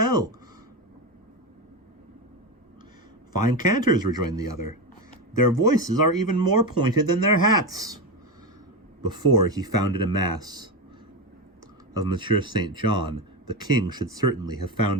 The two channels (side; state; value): both; normal; correlation 0.16